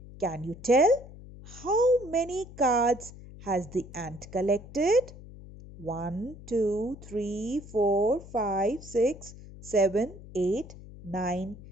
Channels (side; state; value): left; noise; hum, 17 dB below the sound